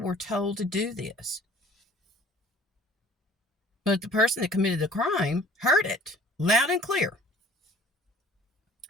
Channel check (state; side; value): normal; both; correlation 0.50